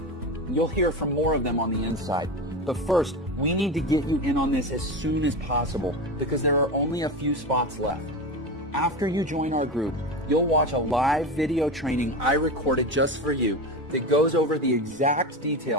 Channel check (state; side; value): normal; both; correlation 0.23